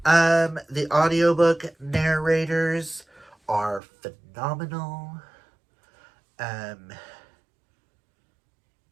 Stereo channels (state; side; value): drops out; left; at 3.8 s